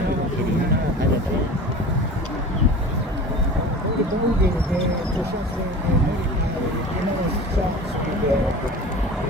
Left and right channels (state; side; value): normal; both; correlation 0.37